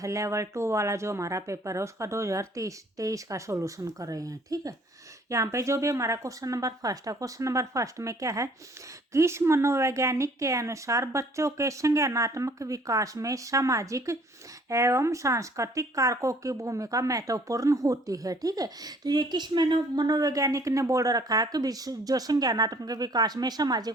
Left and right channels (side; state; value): both; normal; correlation 0.57